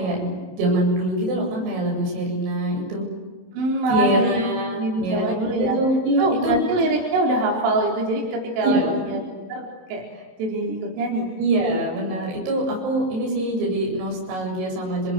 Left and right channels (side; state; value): left; late; 27 ms